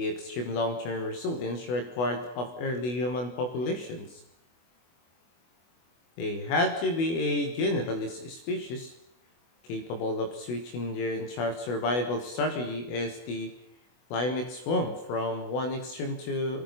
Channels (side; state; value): right; late; 24 ms